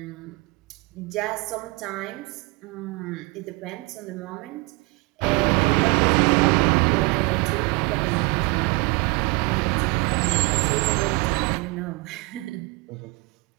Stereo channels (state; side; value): quieter; left; 26.5 dB